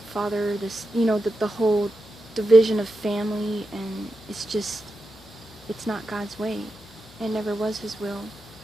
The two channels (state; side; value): normal; both; correlation 0.88